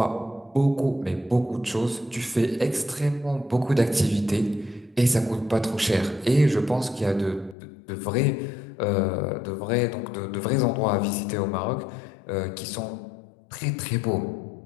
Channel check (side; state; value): right; drops out; at 7.6 s